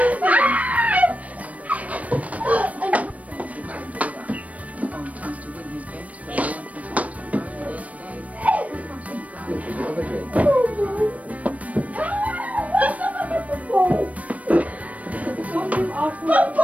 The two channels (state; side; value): late; left; 0.068 ms